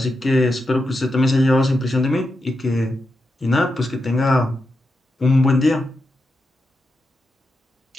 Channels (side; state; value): both; normal; correlation 0.87